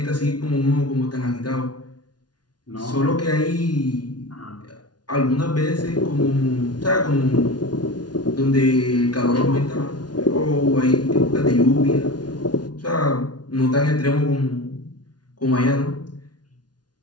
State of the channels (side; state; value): right; late; 0.69 ms